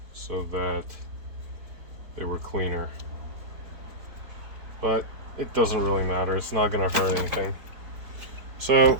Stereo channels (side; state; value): left; late; 4.5 ms